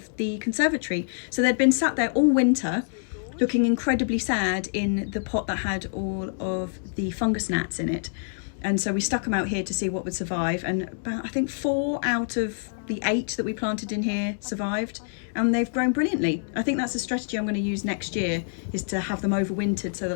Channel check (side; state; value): right; silent; digital silence